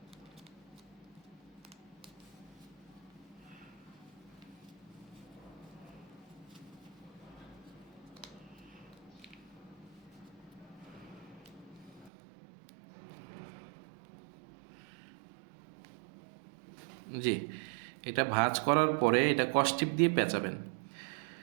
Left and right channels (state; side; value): drops out; left; at 12.1 s